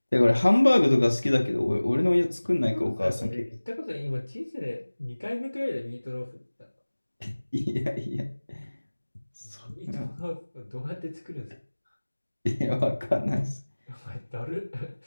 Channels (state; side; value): inverted; both; correlation -1.00